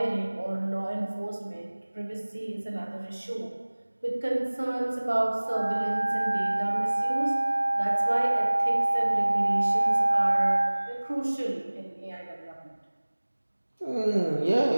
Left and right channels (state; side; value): inverted; both; correlation -1.00